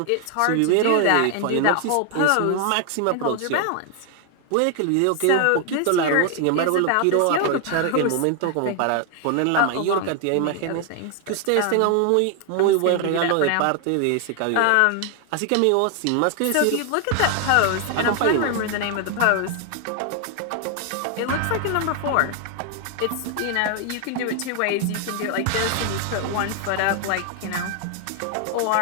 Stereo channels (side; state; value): both; different; correlation 0.00